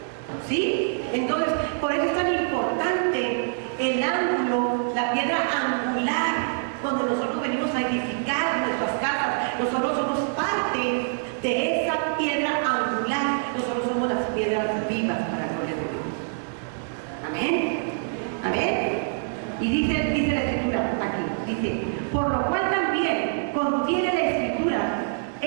¿Sí? Entonces, por eso es tan importante el ángulo, la piedra angular, donde nosotros venimos a edificar nuestras casas. Nosotros somos parte de esa piedra angular. Nosotros somos las piedras vivas para la gloria de Dios. Amén. Amén. Y dice la Escritura aquí, dice, por lo cual también contiene la Escritura,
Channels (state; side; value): silent; left; digital silence